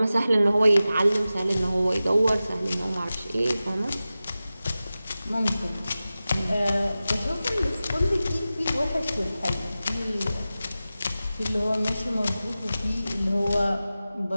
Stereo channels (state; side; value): inverted; both; correlation -0.95